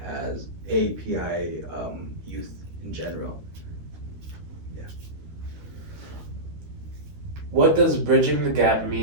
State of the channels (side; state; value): left; late; 13 ms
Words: as API youth in general. Yeah. What does bridging the gap